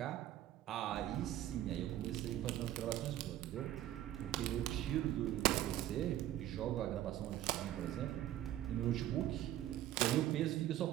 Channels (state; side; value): quieter; left; 13.0 dB